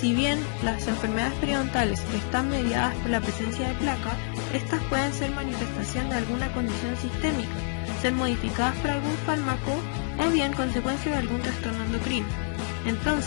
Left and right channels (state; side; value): silent; right; 60 dB below the other